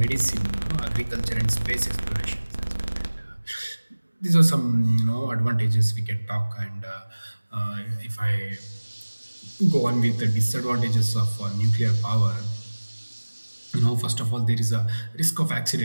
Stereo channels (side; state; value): both; inverted; correlation -1.00